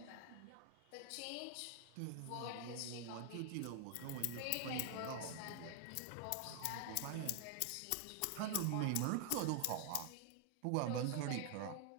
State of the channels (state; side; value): different; both; correlation 0.00